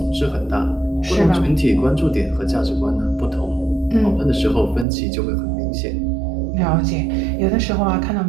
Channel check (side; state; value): left; drops out; at 4.9 s